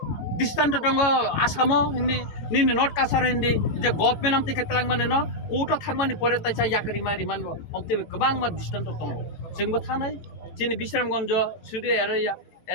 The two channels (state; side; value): late; right; 18 ms